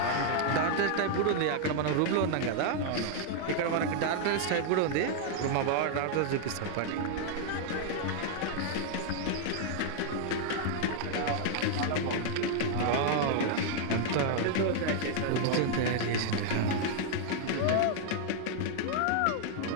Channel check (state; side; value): different; both; correlation 0.00